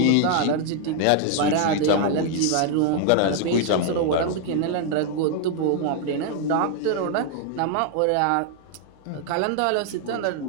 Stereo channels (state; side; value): different; both; correlation 0.00